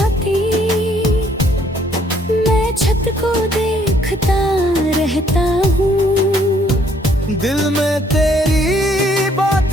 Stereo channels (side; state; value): both; normal; correlation 0.65